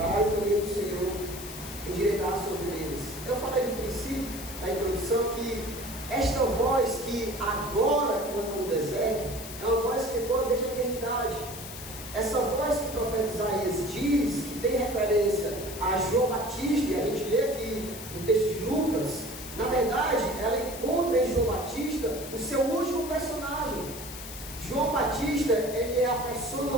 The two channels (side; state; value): left; noise; hiss, 11 dB below the sound